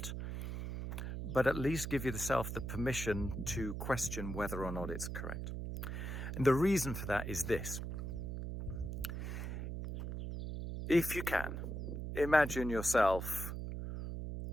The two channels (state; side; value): noise; right; hum, 5 dB below the sound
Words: but at least give yourself the permission to question whether or not it's correct. And the reason for that is this. If you can, imagine yourself